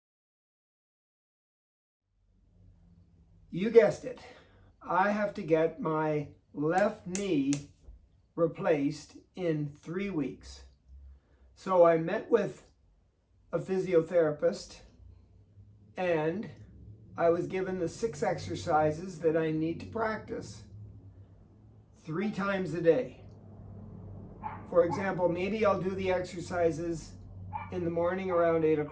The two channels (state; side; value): identical; both; correlation 1.00